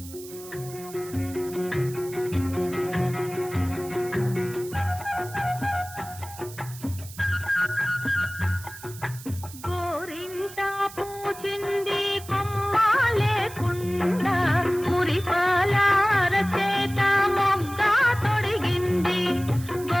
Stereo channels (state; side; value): noise; right; hiss, 16 dB below the sound